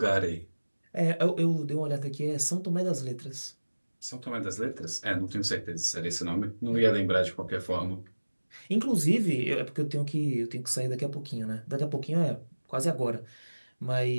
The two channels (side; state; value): both; inverted; correlation -1.00